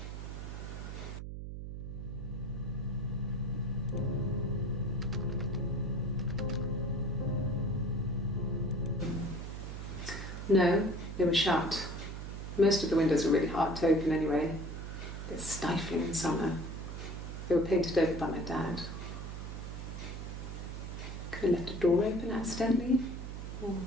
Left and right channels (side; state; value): right; noise; hum, 7 dB below the sound